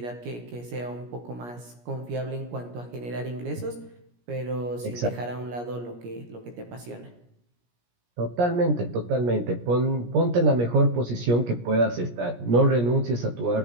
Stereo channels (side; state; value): left; late; 17 ms